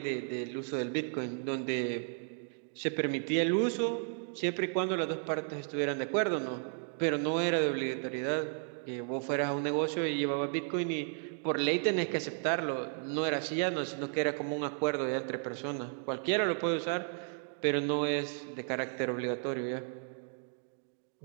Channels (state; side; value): silent; left; 55 dB below the other